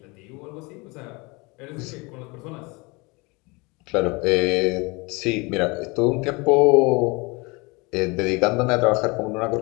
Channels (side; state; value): right; quieter; 26.8 dB